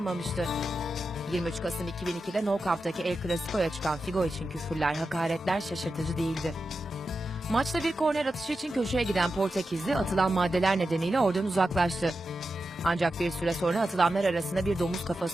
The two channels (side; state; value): both; normal; correlation 0.90